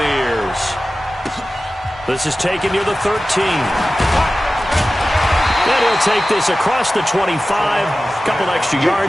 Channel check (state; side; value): normal; both; correlation 0.95